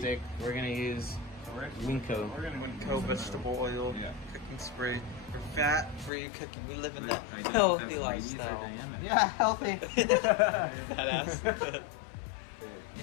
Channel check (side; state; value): right; drops out; at 6.1 s